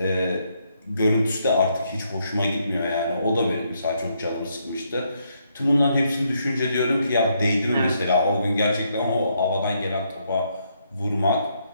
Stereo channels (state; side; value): inverted; both; correlation -0.75